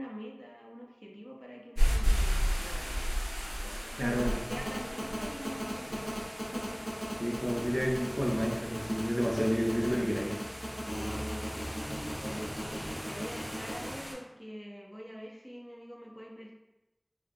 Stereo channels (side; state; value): both; identical; correlation 1.00